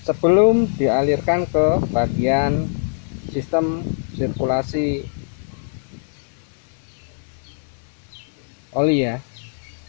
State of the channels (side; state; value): right; silent; digital silence